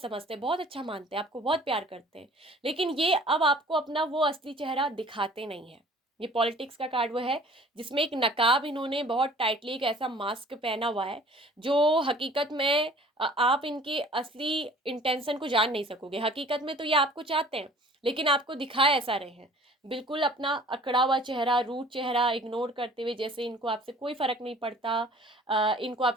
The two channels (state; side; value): normal; both; correlation 0.50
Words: समझते हैं, बहुत अच्छा मानते हैं, आपको बहुत प्यार करते हैं, लेकिन ये अब आपको अपना वो असली चेहरा दिखाते नहीं है। ये पॉलिटिक्स का कार्ड वो है जिसमें एक नकाब इन्होंने बहुत टाइटली, एक ऐसा मास्क पहना हुआ है जो हकीकत में आप इनके असली इंटेंशन को जान नहीं सकोगे। हकीकत में तो ये आपको चाहते हैं, लेकिन आपको दिखा ऐसा रहे हैं, बिल्कुल अपना अकड़ा हुआ चेहरा, रूट चेहरा इग्नोर करते हुए, जैसे इनको आपसे कोई फ़र्क नहीं पड़ता, इनको